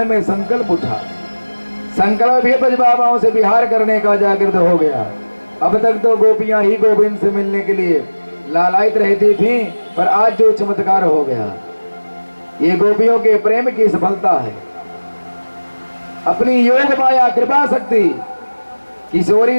में संकल्प उठा। संकल्प भी ब्रजभामाओं से विहार करने का जागृत हो गया। अब तक तो गोपियां ही गोविंद से मिलने के लिए लालायित रहती थीं, पर आज जो चमत्कार हो गया, ये गोपियों के प्रेम की सफलता है। अपनी योग माया कृपा शक्ति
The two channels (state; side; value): inverted; both; correlation -1.00